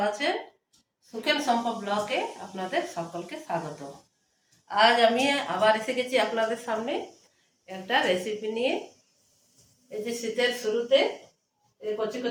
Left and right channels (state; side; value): identical; both; correlation 1.00